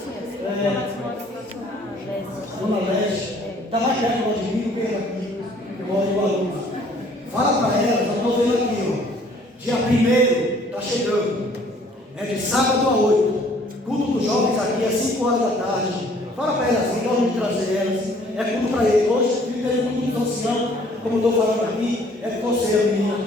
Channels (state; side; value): normal; both; correlation 0.58